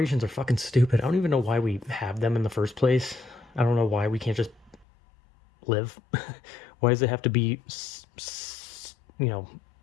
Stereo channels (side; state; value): right; drops out; at 4.9 s